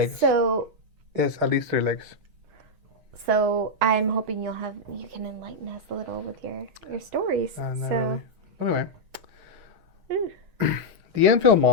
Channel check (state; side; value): late; left; 6.4 ms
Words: So It's at least 3 legs. I'm hoping you can enlighten us a little with your stories. Not So really. Anyway. The Enfield